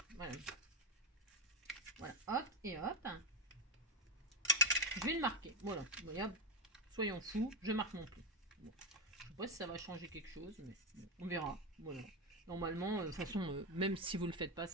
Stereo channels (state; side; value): normal; both; correlation 0.12